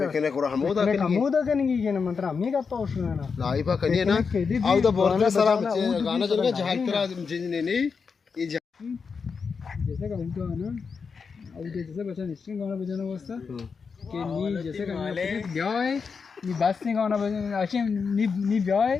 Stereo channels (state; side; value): quieter; right; 5.5 dB